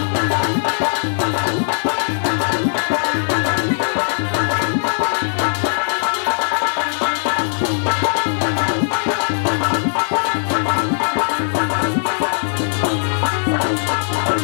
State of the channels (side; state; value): right; silent; digital silence